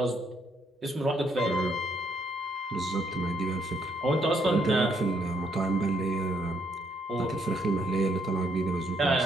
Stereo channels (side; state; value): both; normal; correlation 0.72